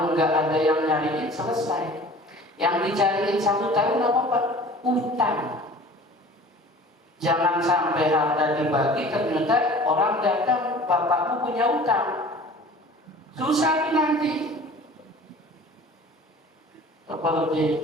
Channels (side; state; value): both; normal; correlation 0.44